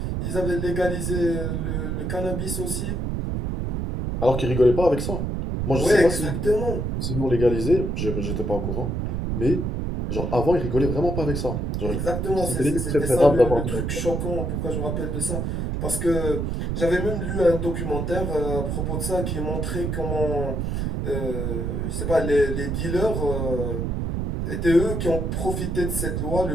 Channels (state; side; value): noise; right; rumble, 1 dB below the sound